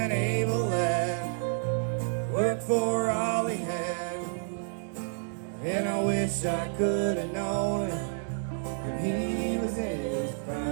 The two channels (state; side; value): silent; left; digital silence